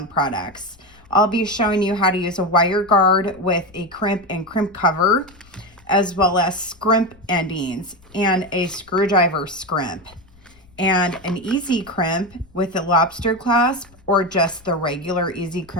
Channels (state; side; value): noise; left; rumble, 27 dB below the sound